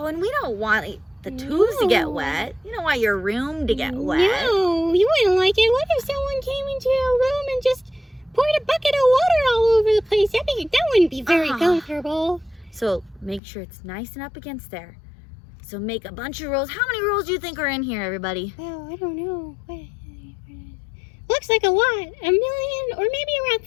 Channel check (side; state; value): right; drops out; at 13.4 s